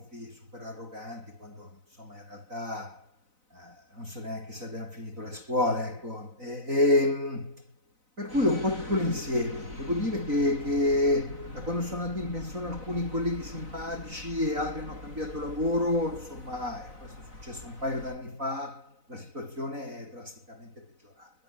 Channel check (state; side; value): late; left; 4.0 ms